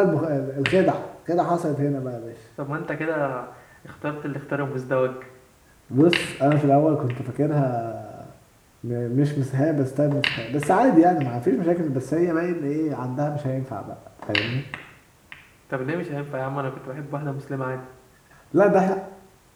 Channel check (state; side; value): identical; both; correlation 1.00